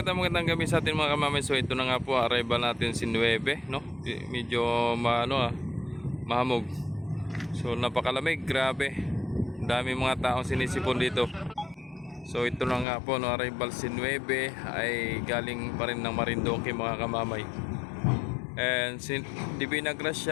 gabi sa atin mga kamamay. So ito na nga po, arrival natin si 9, no? Medyo mahamog. So napakalamig, grabe. Dami mga taong sinisipon dito. So ito na nga po, no, arrival si 9 ay galing pa rin ng Marinduque mga kamamay. And si Divina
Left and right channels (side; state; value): right; drops out; at 12.9 s